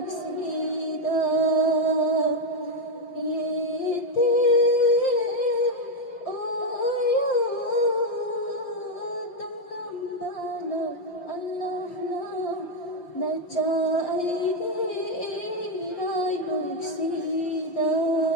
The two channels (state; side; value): late; right; 5.8 ms